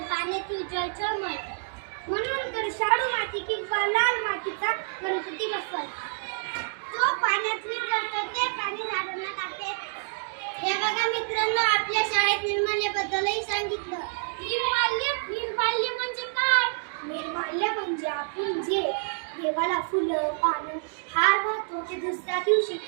पाण्यातील जलचर मरतात. म्हणून तर शाडू माती किंवा लाल मातीचा गणपती बसवायचा. जो पाण्यात विरघळतो ते पाणी झाडांना टाकते. हे बघा मित्रांनो, आपल्या शाळेत निर्माल्याबद्दलही सांगितलं. निर्माल्य म्हणजे काय? निर्माल्य म्हणजे आपण जे देवाला फुलं, पानं, हार वाहतो ते दुसऱ्या दिवशी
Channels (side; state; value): left; silent; digital silence